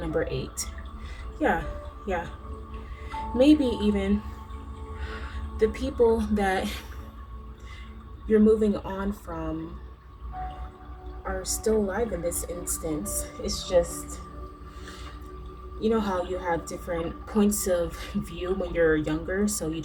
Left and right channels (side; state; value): both; identical; correlation 1.00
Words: 8. Yeah. Maybe even the people that you're moving on from are still alive in this instance. It's just, you know how you have different points of view when you're younger, so you